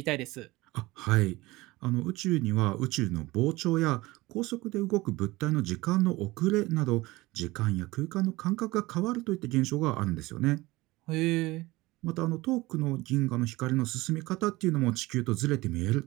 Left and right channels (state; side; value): quieter; left; 20.3 dB